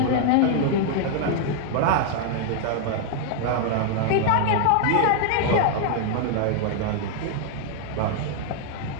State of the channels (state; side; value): different; both; correlation 0.00